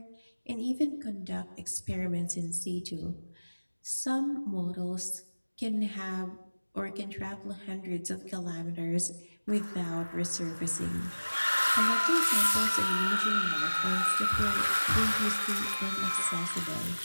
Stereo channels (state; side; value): inverted; both; correlation -1.00